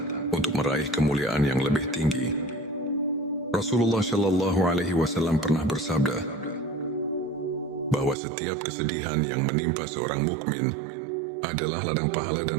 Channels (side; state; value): left; drops out; at 8.2 s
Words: untuk meraih kemuliaan yang lebih tinggi. Rasulullah Shallallahu Alaihi Wasallam pernah bersabda bahwa setiap kesedihan yang menimpa seorang mukmin adalah ladang pahala